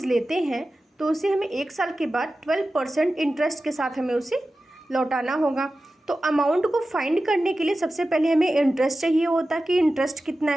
लेते हैं तो उसे हमें 1 साल के बाद 12% इंटरेस्ट के साथ हमें उसे लौटाना होगा। तो अमाउंट को फाइंड करने के लिए सबसे पहले हमें इंटरेस्ट चाहिए होता कि इंटरेस्ट कितना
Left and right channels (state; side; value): normal; both; correlation 0.94